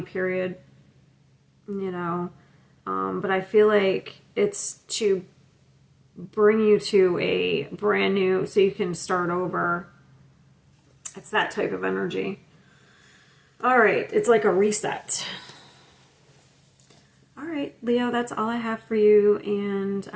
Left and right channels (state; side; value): identical; both; correlation 1.00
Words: period, you know. But I feel like it's to bring you to a brand new, so you can start over. It's that type of energy. All right, it's like a reset. All right, Leo, that's all I have for you, and